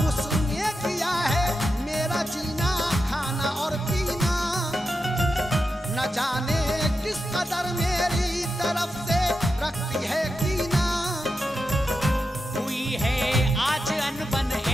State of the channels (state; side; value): normal; both; correlation 0.89